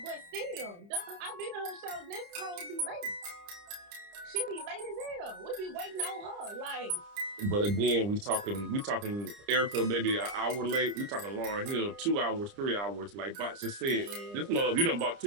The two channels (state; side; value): late; left; 30 ms